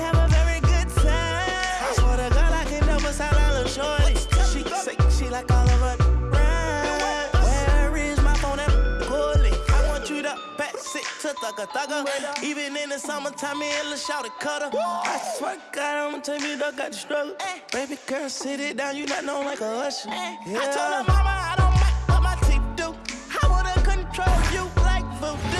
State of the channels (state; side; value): identical; both; correlation 1.00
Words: a very good time. I swear to God, I can never sound a little shorty. She say she like all of her rhymes. Where is my phone and bully? I want you to pass it to thugger. Even in the summertime, me and Lil' Shawty cutter. I swear to God, I'ma tell you that got the struggle. Baby girl, sit it down, you not known like a usher. I told her mama I don't mind what my teeth do. I wanna control you like